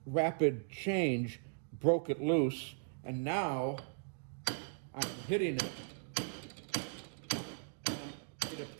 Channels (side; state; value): left; silent; digital silence